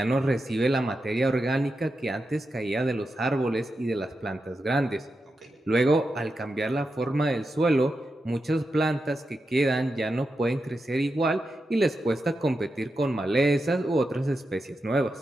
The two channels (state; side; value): normal; both; correlation 0.88